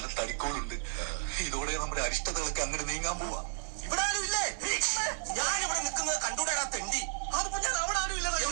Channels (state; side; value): silent; left; digital silence